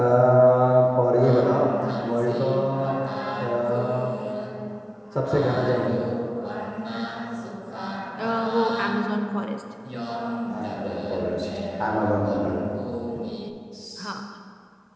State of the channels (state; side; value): identical; both; correlation 1.00